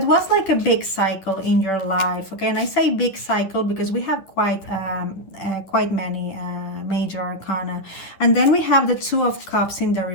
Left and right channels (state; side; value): late; right; 10 ms